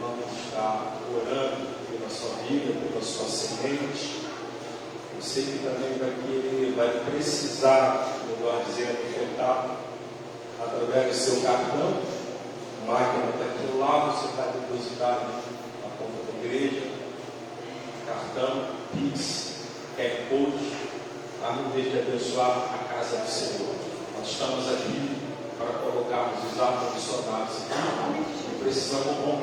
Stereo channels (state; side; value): identical; both; correlation 1.00